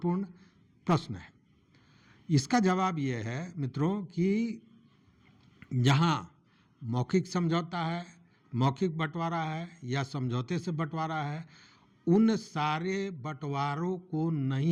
प्रश्न है। इसका जवाब ये है मित्रों कि जहाँ मौखिक समझौता है, मौखिक बंटवारा है या समझौते से बंटवारा है, उन सारे बंटवारों को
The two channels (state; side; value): identical; both; correlation 1.00